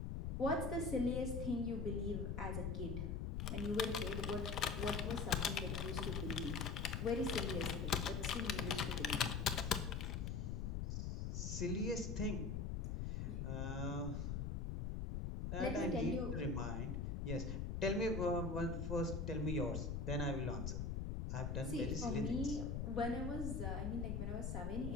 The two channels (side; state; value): left; noise; rumble, 1 dB below the sound